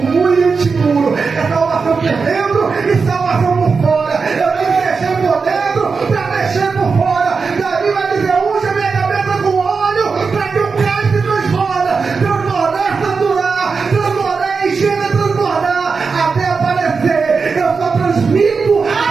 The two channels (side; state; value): left; quieter; 4.9 dB